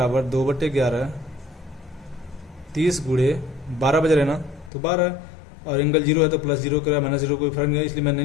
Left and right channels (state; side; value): drops out; right; at 4.7 s